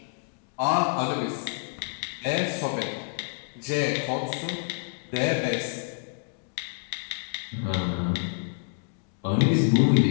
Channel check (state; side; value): silent; right; digital silence